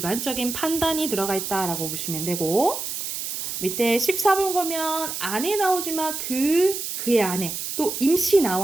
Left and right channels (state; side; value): noise; right; hiss, 5 dB below the sound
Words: 판단이 들어가 있다라고 보시면 되고 밑에 14번 보면 안에 나오지만 그의 안에 또 임시